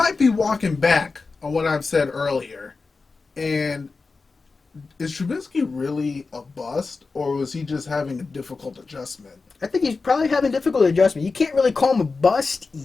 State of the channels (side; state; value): right; quieter; 4.2 dB